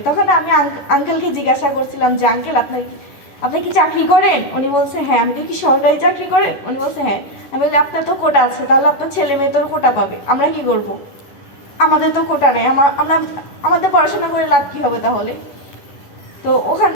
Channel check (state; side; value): late; right; 11 ms